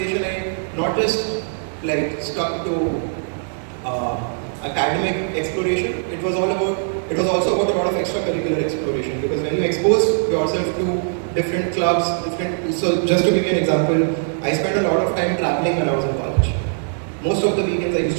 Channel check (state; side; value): silent; left; digital silence